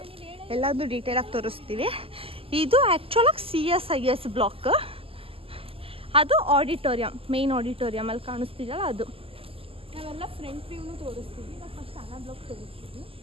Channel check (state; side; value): late; left; 0.27 ms